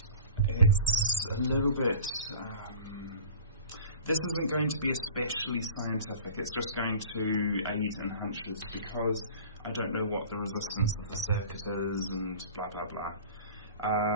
it's a little bit... this isn't going to be especially scientific, it's just going to aid in hunches because I don't know what the resistance of the circuit is and blah blah blah.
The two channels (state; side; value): inverted; both; correlation -0.41